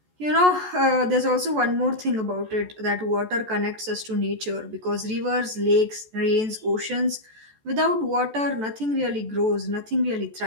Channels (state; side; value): late; left; 14 ms